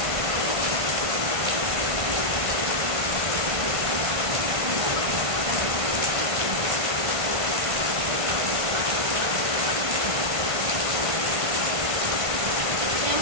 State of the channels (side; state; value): left; late; 1.5 ms